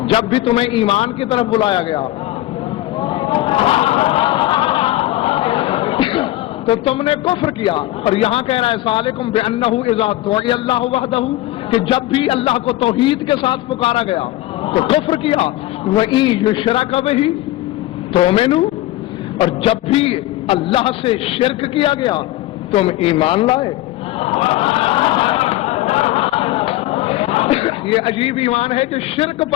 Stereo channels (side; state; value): right; quieter; 16.4 dB